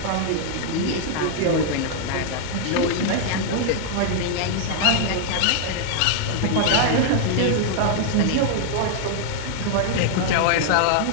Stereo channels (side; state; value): both; different; correlation 0.00